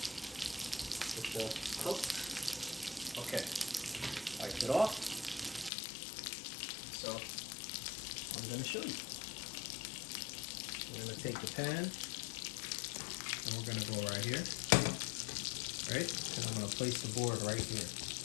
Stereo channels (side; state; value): right; drops out; at 5.7 s